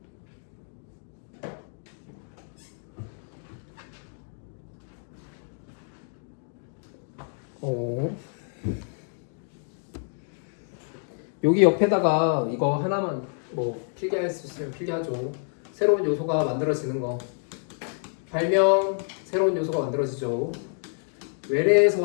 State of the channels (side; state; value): right; silent; 59 dB below the other